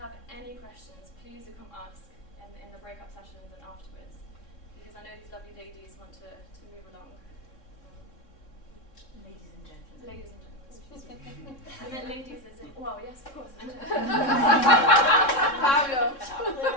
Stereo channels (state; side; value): late; right; 3.6 ms